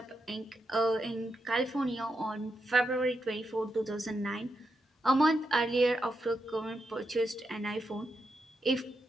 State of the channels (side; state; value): both; normal; correlation 0.84